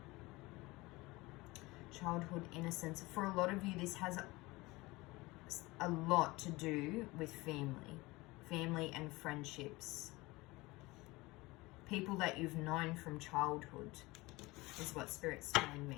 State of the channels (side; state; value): right; quieter; 21.7 dB